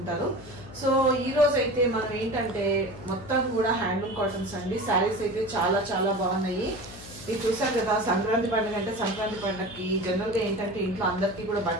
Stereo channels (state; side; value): noise; left; hum, 16 dB below the sound